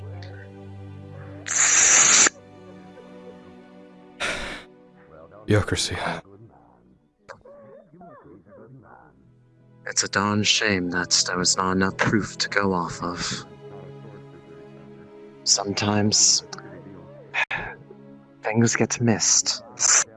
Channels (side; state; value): both; identical; correlation 1.00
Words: Bureaucracy. It's a darn shame that there was not enough proof to go off of. Sometimes things get missed.